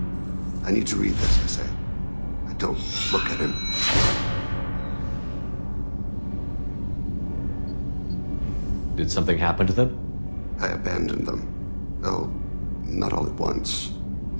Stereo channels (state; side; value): inverted; both; correlation -1.00